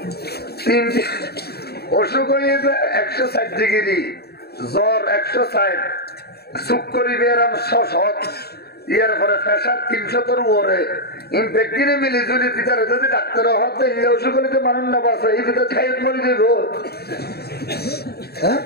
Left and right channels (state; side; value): late; right; 0.46 ms